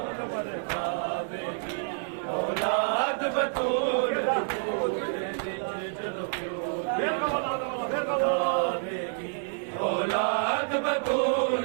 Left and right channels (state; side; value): silent; left; digital silence